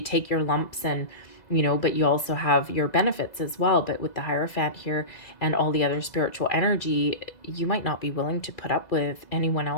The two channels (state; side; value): late; right; 2.0 ms